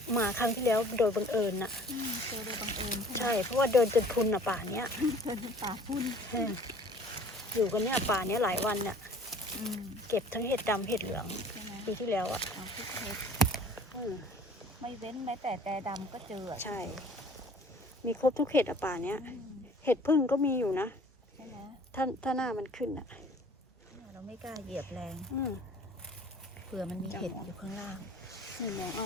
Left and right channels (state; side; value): normal; both; correlation 0.51